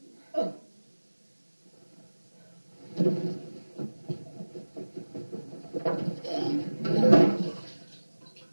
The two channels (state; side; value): inverted; both; correlation -1.00